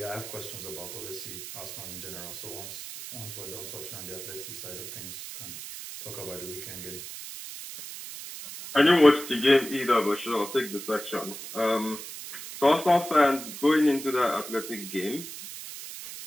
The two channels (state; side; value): noise; right; hiss, 10 dB below the sound